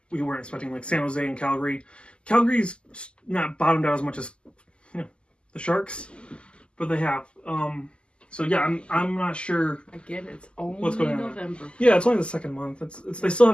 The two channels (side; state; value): right; late; 0.051 ms